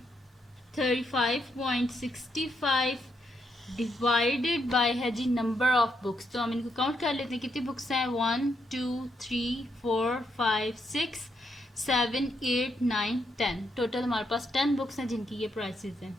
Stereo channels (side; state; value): both; normal; correlation 0.78